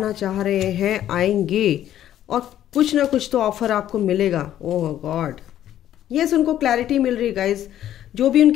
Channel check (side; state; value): right; quieter; 11.7 dB